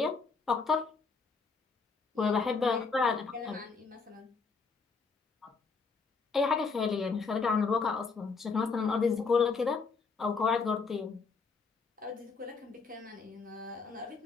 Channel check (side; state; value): right; quieter; 4.8 dB